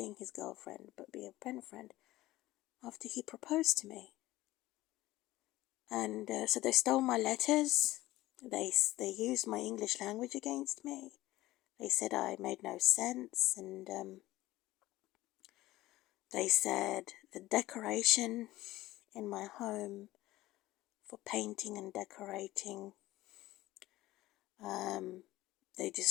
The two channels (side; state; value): right; quieter; 17.0 dB